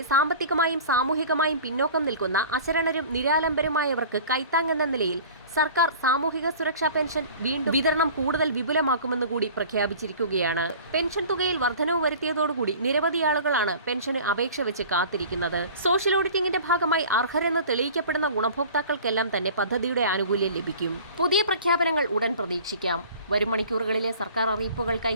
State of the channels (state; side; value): inverted; both; correlation -0.43